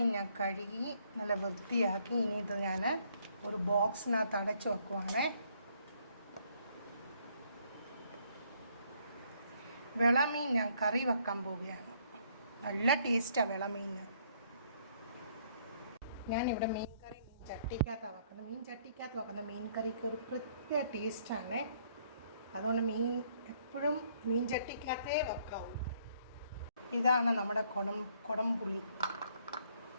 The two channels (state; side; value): inverted; both; correlation -0.66